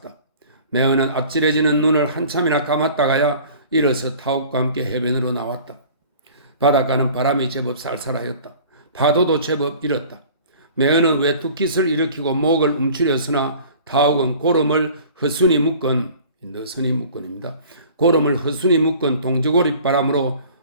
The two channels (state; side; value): inverted; both; correlation -0.46